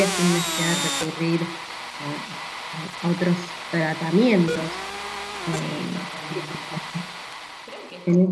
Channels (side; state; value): both; identical; correlation 1.00